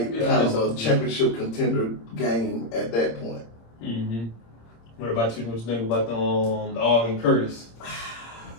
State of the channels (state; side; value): late; right; 26 ms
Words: of a championship contender game at that point. What about you? What you think about the Ogden Curtis?